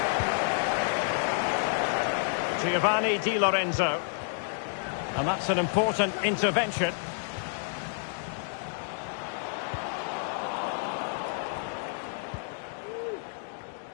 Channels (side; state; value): right; silent; digital silence